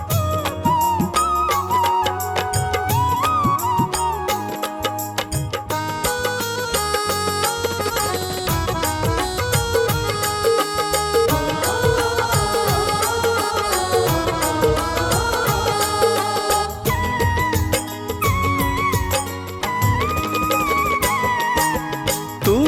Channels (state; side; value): identical; both; correlation 1.00